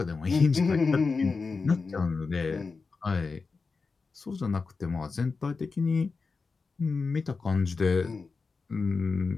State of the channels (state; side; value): quieter; right; 4.5 dB